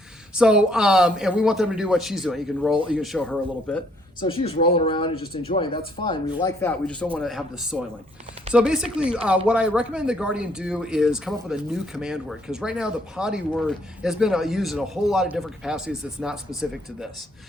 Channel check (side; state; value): both; normal; correlation 0.67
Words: So, and we want them to do what she's doing. You can show her a little bit. So she's rolling around and just enjoying. That's fine. We like that. We just don't want to have the soiling. So basically, what I recommend the guardian do is come up with a new command word, because right now the potty word has been used in a whole lot of different capacities that's not specific to this.